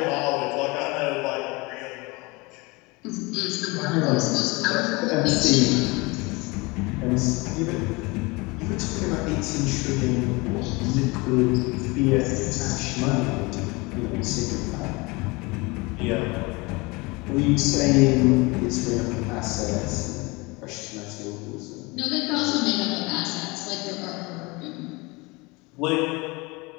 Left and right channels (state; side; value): quieter; right; 25.4 dB